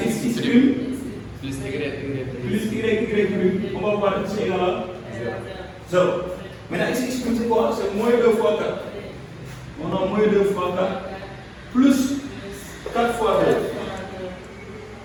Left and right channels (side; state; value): both; identical; correlation 1.00